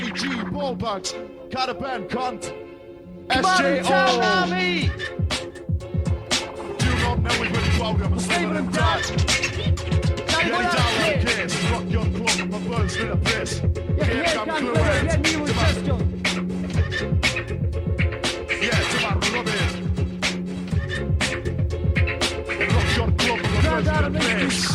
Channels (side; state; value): both; identical; correlation 1.00